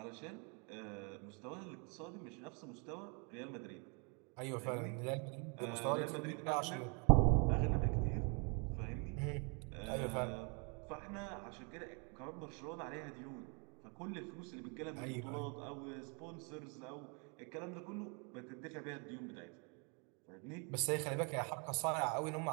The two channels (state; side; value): quieter; left; 34.7 dB